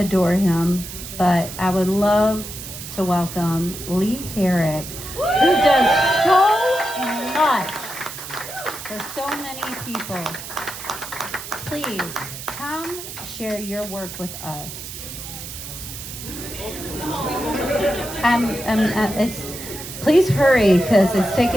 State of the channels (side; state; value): right; noise; hiss, 10 dB below the sound